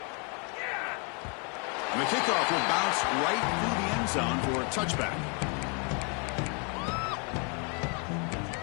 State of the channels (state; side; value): quieter; right; 35.9 dB